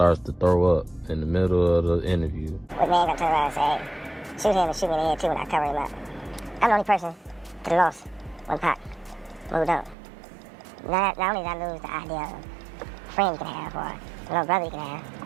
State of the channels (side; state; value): left; drops out; at 10.0 s